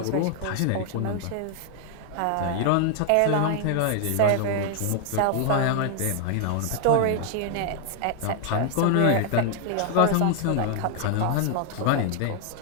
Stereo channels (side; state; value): both; different; correlation 0.00